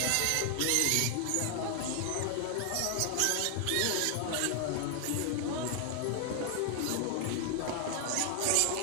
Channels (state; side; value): different; both; correlation 0.00